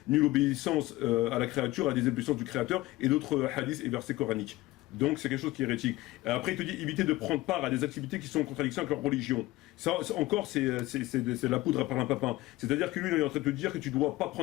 nulle obéissance à la créature, à des obéissances du créateur, et d'autres hadiths et versets coraniques. Donc c'est quelque chose qui est hérétique. Et après il te dit éviter de prendre part à des activités qui sont en contradiction avec leur religion. Ça encore c'est la poudre à parlimpapin. C'est-à-dire que lui il est en train de te dire que tu ne dois pas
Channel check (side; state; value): right; quieter; 18.6 dB